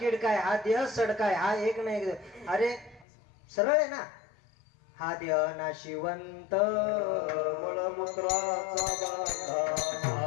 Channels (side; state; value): right; drops out; at 3.1 s